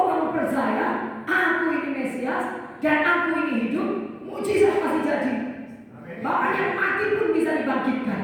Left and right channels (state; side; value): identical; both; correlation 1.00